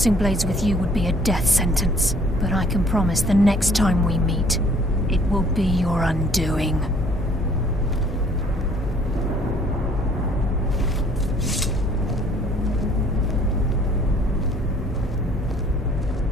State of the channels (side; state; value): both; normal; correlation 0.58